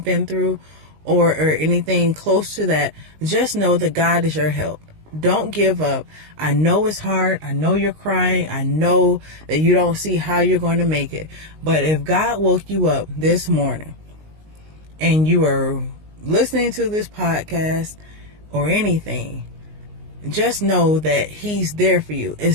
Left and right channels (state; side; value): late; left; 19 ms